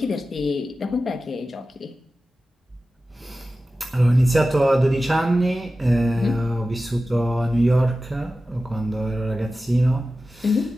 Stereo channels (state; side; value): normal; both; correlation 0.94